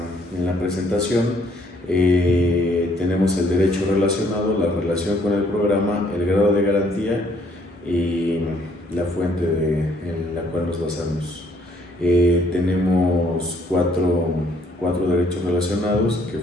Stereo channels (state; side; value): normal; both; correlation 0.65